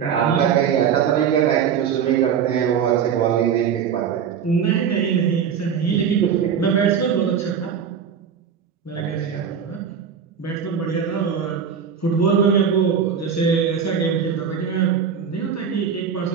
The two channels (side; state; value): left; quieter; 7.4 dB